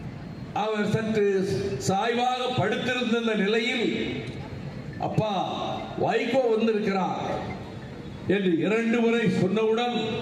அவர் சற்று சாய்வாக படுத்திருந்த நிலையில், அப்பா வைகோ வந்திருக்கிறார் என்று 2 முறை சொன்னவுடன்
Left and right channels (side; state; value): both; identical; correlation 1.00